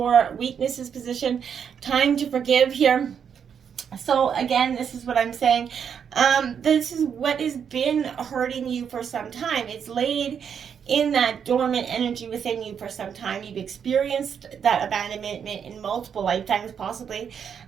weaknesses position. Time to forgive here. So again, this is what I'm saying. This is what has been hurting you for some time. It's laid in that dormant energy within you for some time. You've experienced that abandonment in multiple lifetimes possibly.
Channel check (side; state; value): left; quieter; 7.5 dB